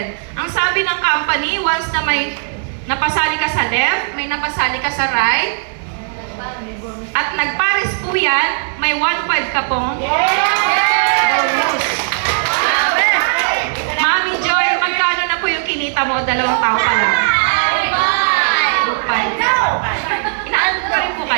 Ang sabi ng company, once na may napasali ka sa left, may napasali ka sa right, at nagpares po yan, may 1.5 ka pong bonus. Mami Joy, magkano na po yung kinita mo? 2 taon pa lang. 2.5. Inaanto rin po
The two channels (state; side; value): silent; left; digital silence